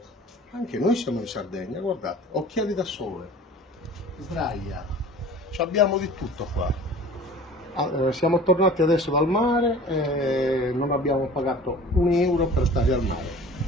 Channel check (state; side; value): normal; both; correlation 0.43